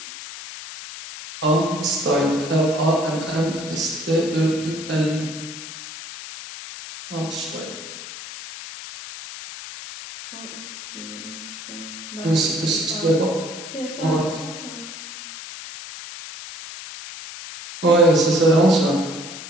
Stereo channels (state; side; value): noise; left; hiss, 12 dB below the sound